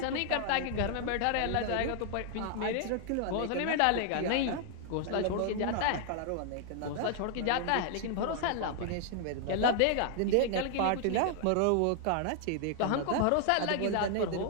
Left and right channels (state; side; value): different; both; correlation 0.00